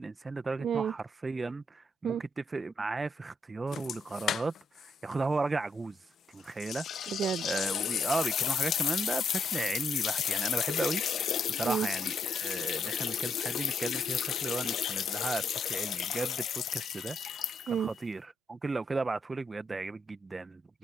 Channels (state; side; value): normal; both; correlation 0.77